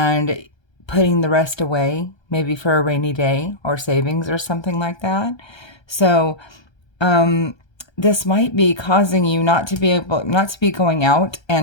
putting the rest away, maybe for a rainy day or savings or something like that. So this might be causing you not to be going out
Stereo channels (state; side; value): late; right; 1.3 ms